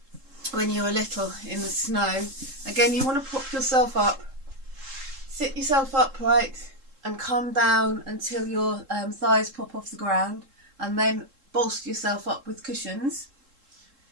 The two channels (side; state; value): left; late; 3.7 ms